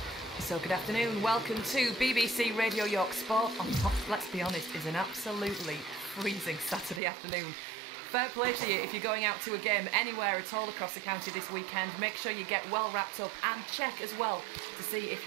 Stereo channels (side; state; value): left; drops out; at 7.0 s